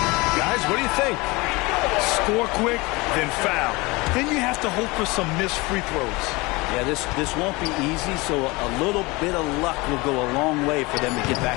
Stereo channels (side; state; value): right; quieter; 24.1 dB